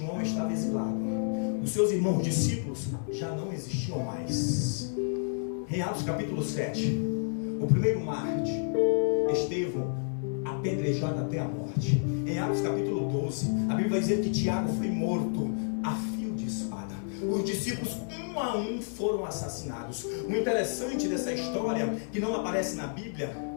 estava exilado. Os seus irmãos discípulos já não existiam mais. Em Atos capítulo 7, o primeiro mártir, Estevão, apedrejado até a morte. Em Atos capítulo 12, a Bíblia vai dizer que Tiago foi morto a fio de espada. Os discípulos, um a um, foram assassinados. O interessante dessa história, que não aparece na Bíblia,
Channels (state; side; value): silent; right; digital silence